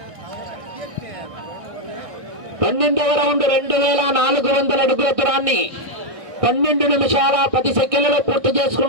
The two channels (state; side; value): late; left; 1.6 ms